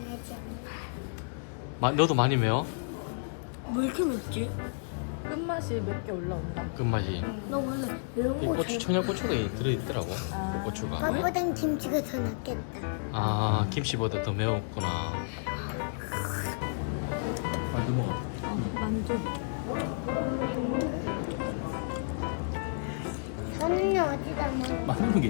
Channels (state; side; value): silent; right; digital silence